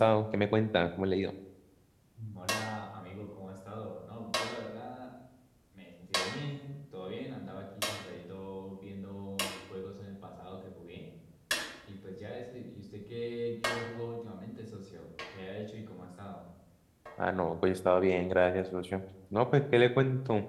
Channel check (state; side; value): identical; both; correlation 1.00